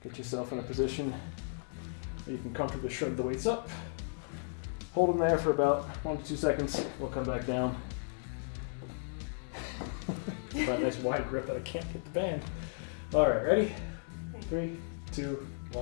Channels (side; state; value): right; silent; digital silence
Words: Get yourself in a position where you can comfortably shrug the weights up. Hold them there for about 1 to 2 seconds. We'll come back down. Got a nice wide grip that I can't get the band. All right, ready? 3, 2,